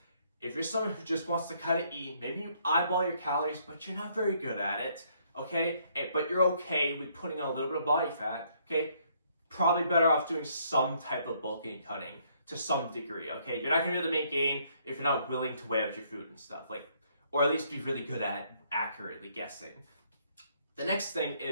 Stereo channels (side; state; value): both; inverted; correlation -0.68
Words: If you're someone who just wants to kind of eat, maybe you eyeball your calories, but you're not very good at it, okay? But you're okay with putting on a little bit of body fat, okay? Probably better off doing some type of bulking and cutting to some degree, okay? You're not going to be able to make gain if you're not willing to weigh out your food and stuff, like, or at least be really good at accurately guessing. The next thing